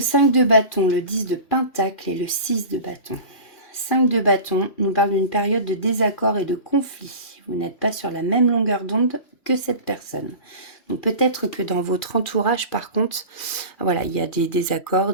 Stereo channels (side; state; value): right; late; 2.4 ms